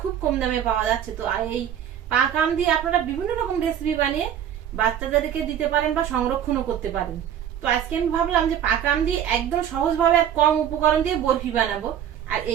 খুব কম দামে পাওয়া যাচ্ছে। তো এই পাকা আম দিয়ে আপনারা বিভিন্ন রকম রেসিপি বানিয়ে বাচ্চাদেরকে দিতে পারেন বা সংরক্ষণও করতে পারেন। তো আজকে আমি ভাবলাম যে পাকা আম দিয়ে একদম সহজভাবে আর কম উপকরণ দিয়ে বরফি বানাবো, আর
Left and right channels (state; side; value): quieter; left; 9.9 dB